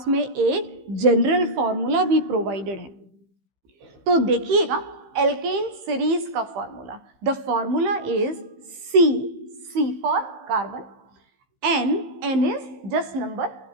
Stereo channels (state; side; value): late; left; 15 ms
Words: में एक जनरल फॉर्मूला भी प्रोवाइडेड है। तो देखिएगा एल्केन सीरीज का formula, the formula is C for carbon, N is just number,